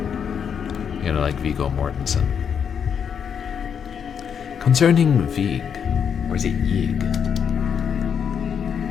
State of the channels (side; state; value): right; quieter; 7.5 dB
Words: You know, like Viggo Mortensen. Concerning Vig. Or is it Yig?